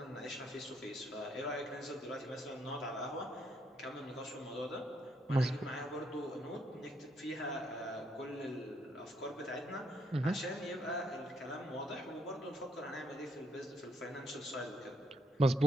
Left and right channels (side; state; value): both; normal; correlation 0.73